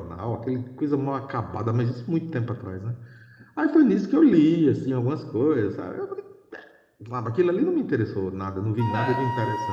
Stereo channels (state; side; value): identical; both; correlation 1.00